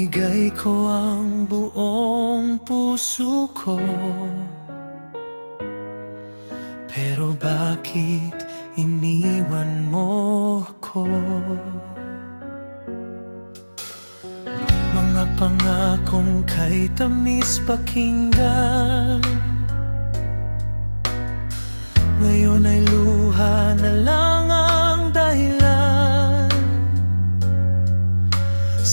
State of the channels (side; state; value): both; inverted; correlation -1.00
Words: ko ang buong puso ko, pero bakit iniwan mo ako? Mga pangakong kay tamis pakinggan, ngayon ay luha na lang ang dahilan.